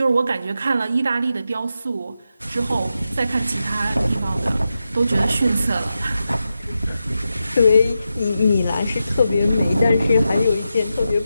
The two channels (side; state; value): both; inverted; correlation -0.89